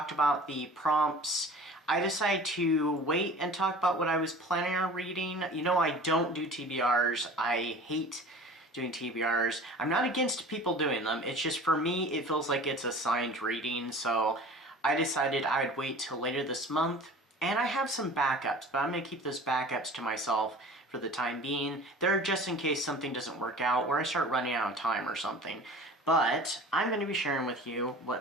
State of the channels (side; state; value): both; normal; correlation 0.41